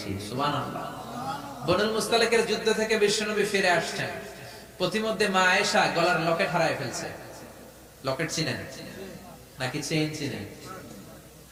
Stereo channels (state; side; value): identical; both; correlation 1.00